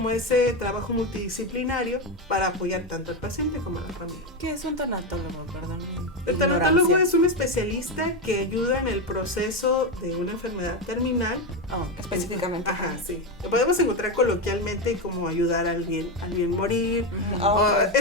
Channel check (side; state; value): both; normal; correlation 0.11